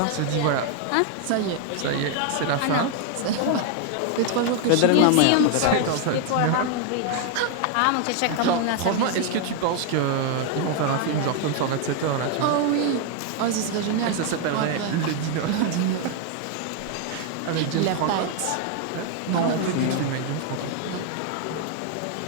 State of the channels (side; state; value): both; different; correlation 0.00